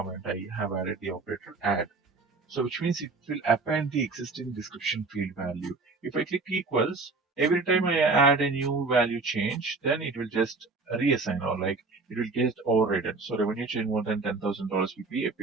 I have added the operator add. So which means it will append the existing description field value. If I click equals, every time I add a new value change, then it will just reassign or like it will get overridden. So revenue change more than $10,000 will be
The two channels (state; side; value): quieter; left; 3.8 dB